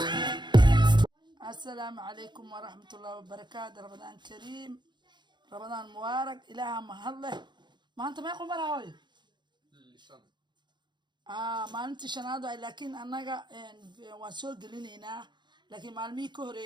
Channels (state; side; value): late; left; 0.22 ms